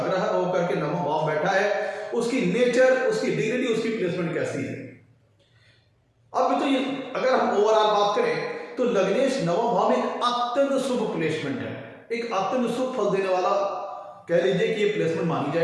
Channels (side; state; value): both; identical; correlation 1.00